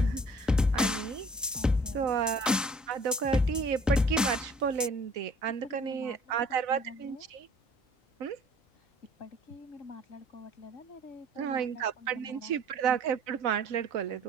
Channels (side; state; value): both; normal; correlation 0.53